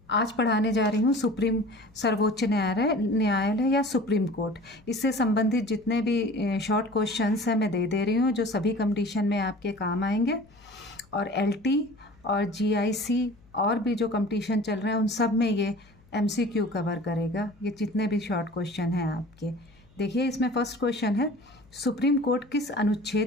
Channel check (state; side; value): noise; left; hum, 28 dB below the sound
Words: आज पढ़ाने जा रही हूँ सर्वोच्च न्यायालय या सुप्रीम कोर्ट। इससे संबंधित जितने भी शॉर्ट क्वेश्चंस हैं मैं दे रही हूँ, जो सभी कंपटीशन में आपके काम आएंगे। और एलटी और जीआईसी और भी जो कंपटीशन चल रहे हैं उन सब में ये एमसीक्यू कवर करेगा, ये जितने भी शॉर्ट क्वेश्चन हैं आपके। देखिए, इसमें फर्स्ट क्वेश्चन है, सुप्रीम कोर्ट किस